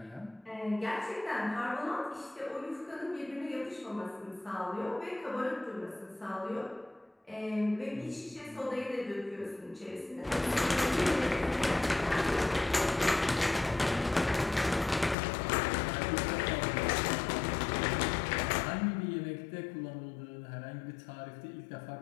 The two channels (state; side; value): drops out; right; at 15.2 s